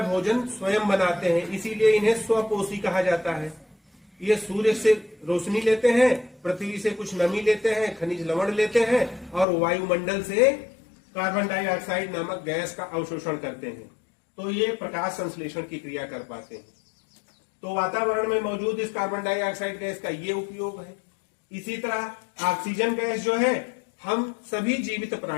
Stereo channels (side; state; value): right; drops out; at 9.5 s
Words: भोजन स्वयं बनाते हैं, इसीलिए इन्हें स्वपोषी कहा जाता है। ये सूर्य से रोशनी लेते हैं, पृथ्वी से कुछ नमी लेते हैं, खनिज लवण लेते हैं और वायुमंडल से कार्बन डाइऑक्साइड नामक गैस का अवशोषण करते हैं। तो ये प्रकाश संश्लेषण की क्रिया कर पाते हैं। तो वातावरण में मौजूद इस कार्बन डाइऑक्साइड गैस का ये उपयोग है। इसी तरह ऑक्सीजन गैस जो है हम सभी जीवित